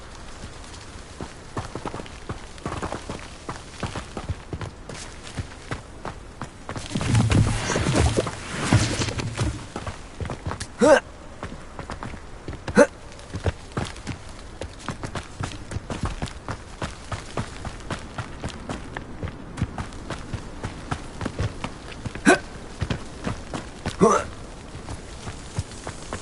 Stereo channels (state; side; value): identical; both; correlation 1.00